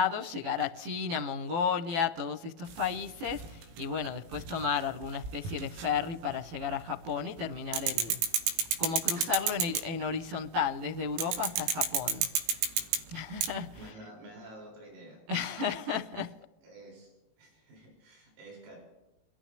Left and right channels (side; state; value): left; late; 18 ms